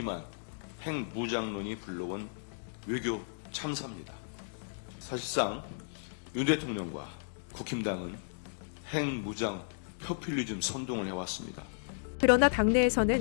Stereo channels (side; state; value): right; silent; digital silence